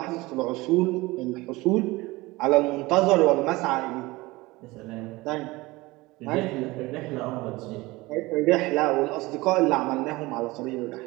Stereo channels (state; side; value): quieter; left; 21.2 dB